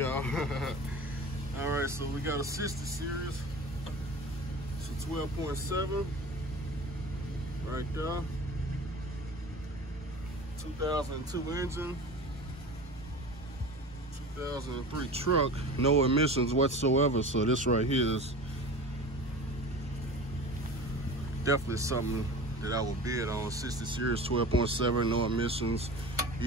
All right, so we got a 60 series. 12.7 right there. 2002 engine, 2003 truck, no emissions whatsoever. So this right here is definitely something that I would bid on. 60 series, 12.7, no emissions,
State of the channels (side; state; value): both; normal; correlation 0.35